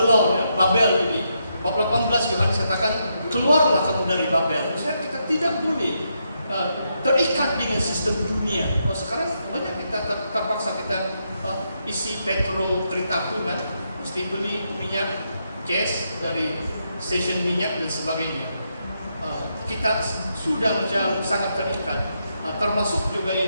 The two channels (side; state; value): both; inverted; correlation -0.81